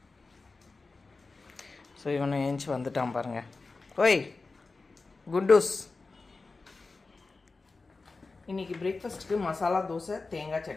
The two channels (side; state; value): right; quieter; 3.8 dB